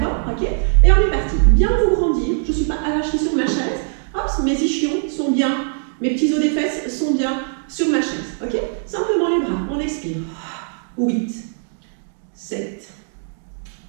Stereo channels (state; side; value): silent; left; digital silence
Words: Ok? Et on est parti. Bien vous grandir. Je ne suis pas arrachée sur ma chaise. Hop, mes ischions sont bien. Mes petits os des fesses sont bien sur ma chaise. Ok? Simplement les bras. On expire. 8, 7,